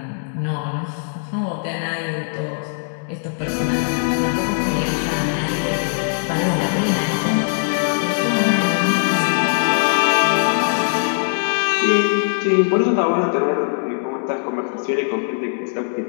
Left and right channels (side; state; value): right; silent; 64 dB below the other